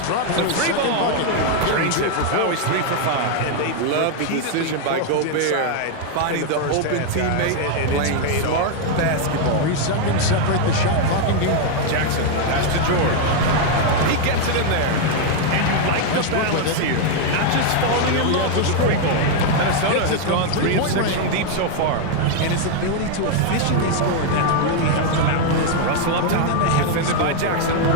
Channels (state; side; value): different; both; correlation 0.00